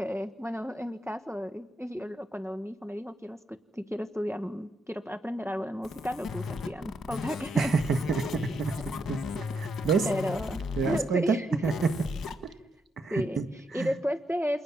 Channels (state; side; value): normal; both; correlation 0.80